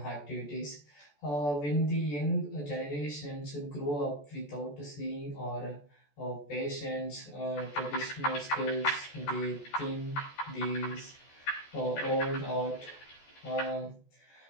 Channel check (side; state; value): right; late; 14 ms